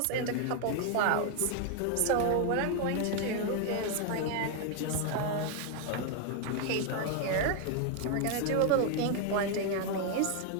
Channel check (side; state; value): both; different; correlation 0.01